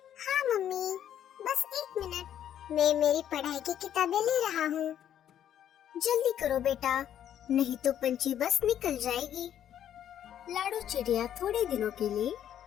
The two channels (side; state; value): right; quieter; 10.3 dB